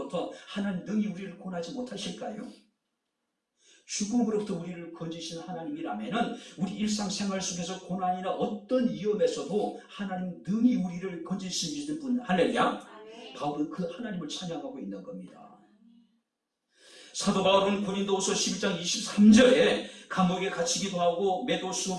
하나님 능히 우리를 구원하지 못하실까요? 죽음으로부터 우리를 건지신 하나님이라면 우리 일상생활 속에서 고난이나 어떤 위험에서도 하나님 능히 우리를 건지시는 분, 할렐루야. 바울은 그 하나님을 찬양하고 있는 겁니다. 사도 바울은 고린도후서 11장 23절에 감옥에 갇히기도 하고 매도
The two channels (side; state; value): both; identical; correlation 1.00